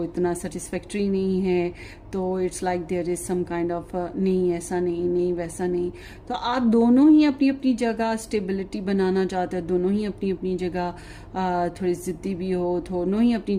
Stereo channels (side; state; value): both; identical; correlation 1.00